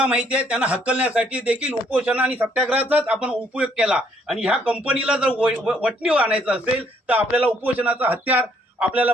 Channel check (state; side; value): normal; both; correlation 0.67